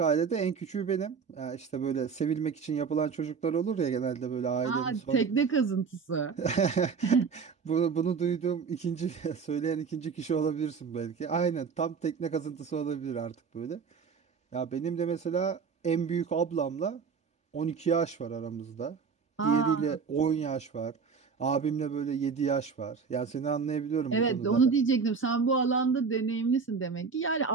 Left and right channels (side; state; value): left; quieter; 5.7 dB